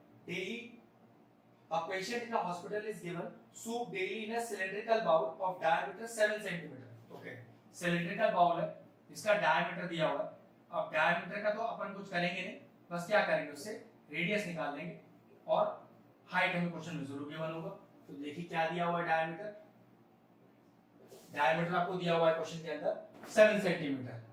daily, a patient in a hospital is given soup daily in a cylindrical bowl of diameter 7 cm। Okay, cylindrical bowl है, इसका डायमीटर दिया हुआ है। अब डायमीटर का तो अपन कुछ करेंगे नहीं, बस क्या करेंगे उससे रेडियस निकाल लेंगे और हाइट हमें क्वेश्चन में जरूर गिवन होगा। तो देखिए क्या दिया हुआ है, डायमीटर, डायमीटर आपको दिया हुआ है क्वेश्चन के अंदर 7 सेंटीमीटर,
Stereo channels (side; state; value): both; identical; correlation 1.00